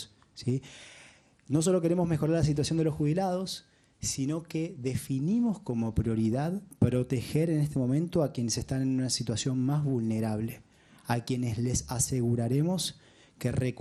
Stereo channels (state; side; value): identical; both; correlation 1.00